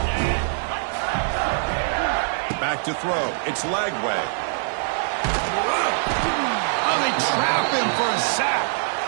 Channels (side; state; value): left; silent; digital silence